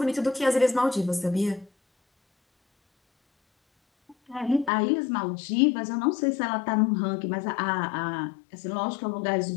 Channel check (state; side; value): drops out; right; at 4.7 s